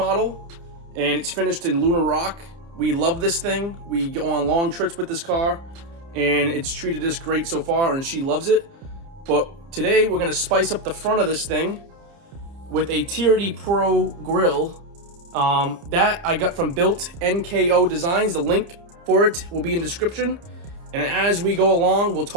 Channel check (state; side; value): late; left; 30 ms